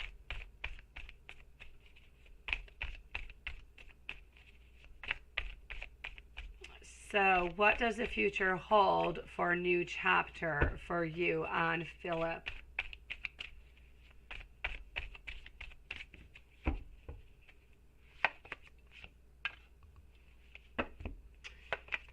So what does the future hold for a New Chapter for you and Philip?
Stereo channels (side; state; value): both; identical; correlation 1.00